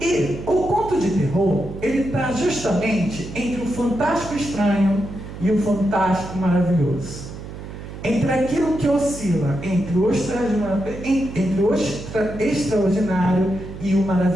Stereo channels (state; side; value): noise; right; hum, 11 dB below the sound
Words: o conto de terror, ele está justamente entre o fantástico estranho e o fantástico maravilhoso. Entre aquilo que oscila entre o extraordinário e o